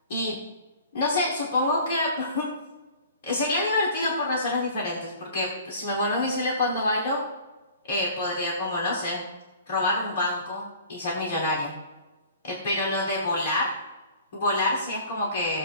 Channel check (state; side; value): inverted; both; correlation -0.46